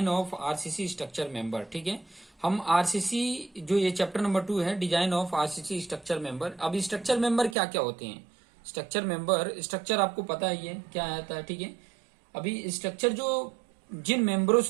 of RCC structure member. ठीक है, हम आरसीसी जो ये चैप्टर नंबर 2 है, design of RCC structure member. अब स्ट्रक्चर मेंबर क्या क्या होते हैं? स्ट्रक्चर मेंबर, स्ट्रक्चर आपको पता ही है क्या आता है। ठीक है, अभी स्ट्रक्चर जो जिन मेंबरों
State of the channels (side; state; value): left; drops out; at 7.6 s